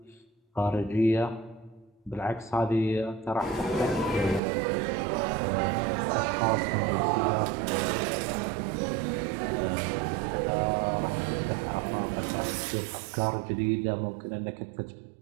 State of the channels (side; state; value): left; drops out; at 4.4 s